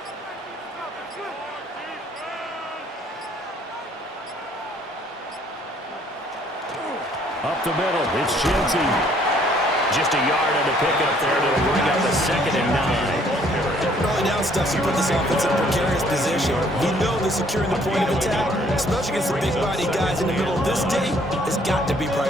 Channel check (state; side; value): normal; both; correlation 0.62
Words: Up the middle, it's Genty. Just a yard on the pickup there to bring up a 2nd and 9. Early down stuff to put this offense in a precarious position. We know that securing the point of attack, especially against the big body guys in the middle of this D, has got to be